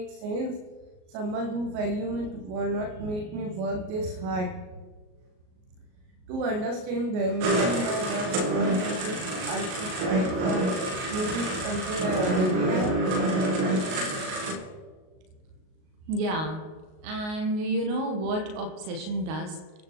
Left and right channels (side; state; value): left; late; 38 ms